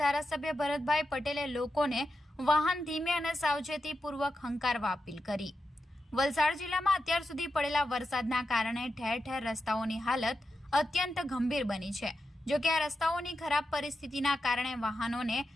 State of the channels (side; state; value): both; normal; correlation 0.89